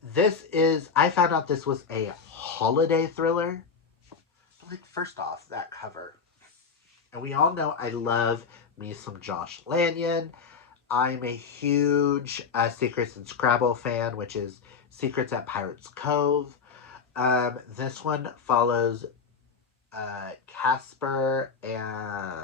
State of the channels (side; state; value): right; quieter; 5.6 dB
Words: this is, I found out this was a holiday thriller. First off, that cover. And we all know I love me some Josh Lanyon. I'm a huge Secrets and Scrabble fan, which is Secrets at Pirates Cove. This one follows Casper and